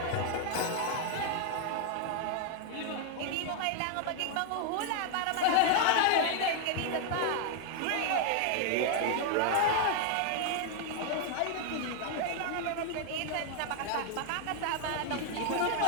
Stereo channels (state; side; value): different; both; correlation 0.00